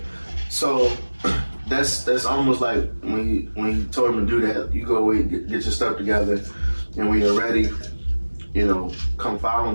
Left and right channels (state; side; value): inverted; both; correlation -1.00